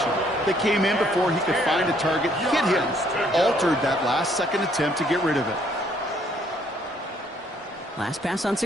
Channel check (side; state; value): both; normal; correlation 0.66